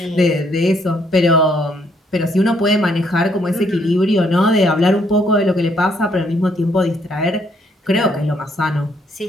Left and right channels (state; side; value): normal; both; correlation 0.69